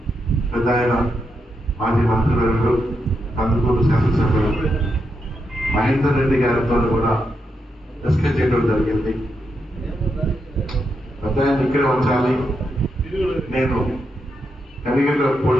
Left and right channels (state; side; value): normal; both; correlation 0.83